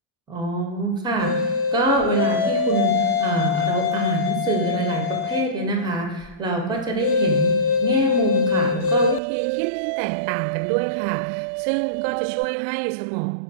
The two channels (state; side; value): drops out; left; at 9.2 s